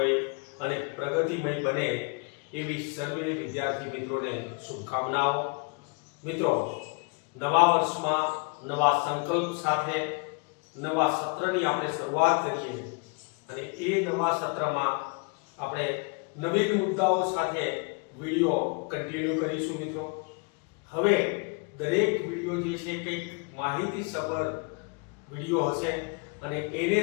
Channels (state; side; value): quieter; right; 34.2 dB